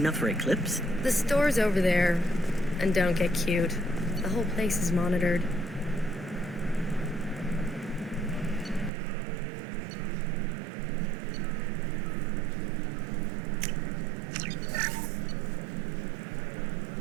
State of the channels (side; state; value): left; drops out; at 8.9 s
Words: for Eclipse? The store's over there. And don't get cute. The whole place is monitored.